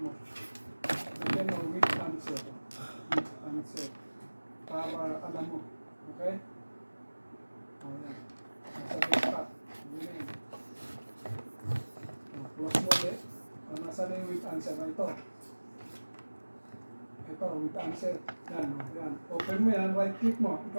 mo. Lagyan mo with answer. With answer. Para alam mo. Okay? O, yan. Nasa desktop. Ganyan. Close mo ulit. Nasa na yung with answer na ito. Ito, with answer. Yan, yan. Open mo yan, right click mo.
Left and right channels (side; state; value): both; inverted; correlation -1.00